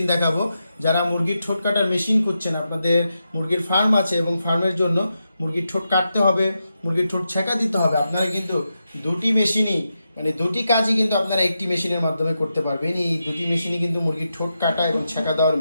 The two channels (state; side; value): inverted; both; correlation -0.87